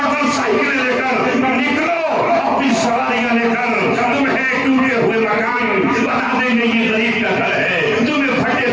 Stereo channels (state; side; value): identical; both; correlation 1.00